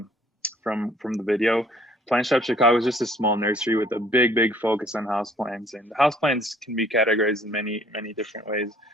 the video, Plant Shop Chicago is just a small nursery with a big focus on houseplants. And houseplants can be categorized in many different ways.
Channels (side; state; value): both; normal; correlation 0.59